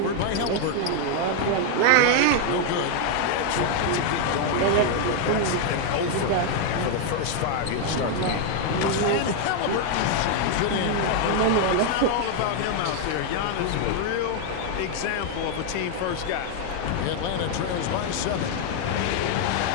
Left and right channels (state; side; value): different; both; correlation 0.00